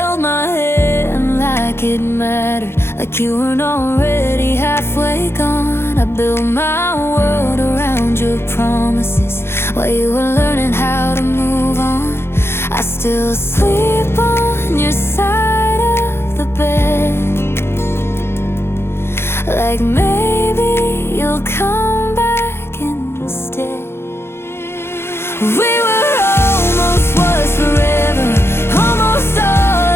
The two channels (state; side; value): late; right; 0.12 ms